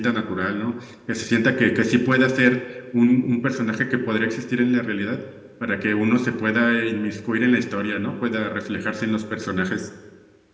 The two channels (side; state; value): both; identical; correlation 1.00